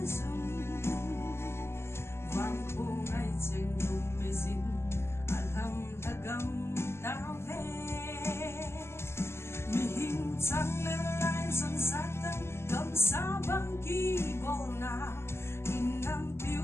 dùng vang khô ngay trên vùng mê dinh alhamdulillah tao về mi hình trăng lên lại dần sát tâm cầm xa băng kỳ bầu na in năm phiêu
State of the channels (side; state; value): right; late; 0.12 ms